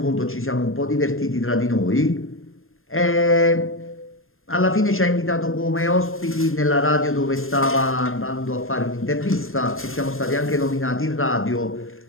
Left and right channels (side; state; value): right; late; 0.60 ms